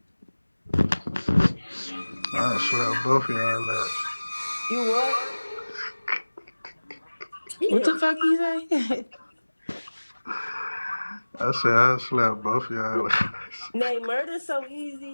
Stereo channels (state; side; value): inverted; both; correlation -1.00